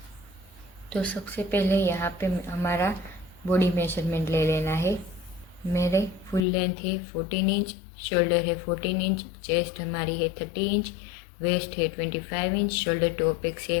तो सबसे पहले यहाँ पे हमारा बॉडी मेजरमेंट ले लेना है। मेरे फुल लेंथ है 14 इंच, शोल्डर है 14 इंच, चेस्ट हमारी है 30 इंच, वेस्ट है 25 इंच, शोल्डर टू अपेक्स है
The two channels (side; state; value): right; drops out; at 6.5 s